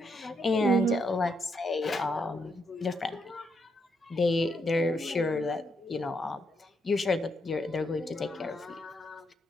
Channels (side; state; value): both; normal; correlation 0.78